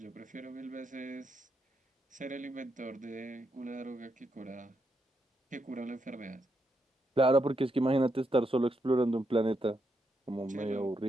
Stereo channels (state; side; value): normal; both; correlation 0.81